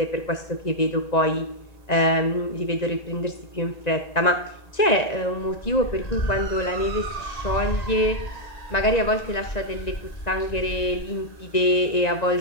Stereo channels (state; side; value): late; right; 1.9 ms